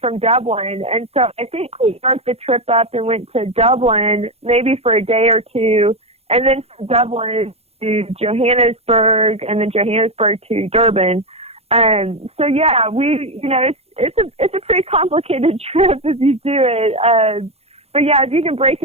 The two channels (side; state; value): left; late; 0.29 ms